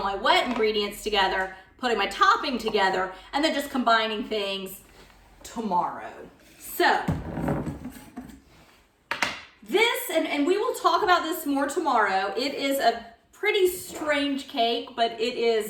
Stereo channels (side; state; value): both; identical; correlation 1.00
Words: my wet ingredients together, putting my topping together, and then just combining things tomorrow. So, this, and we will talk about this more tomorrow, it is a pretty strange cake, but it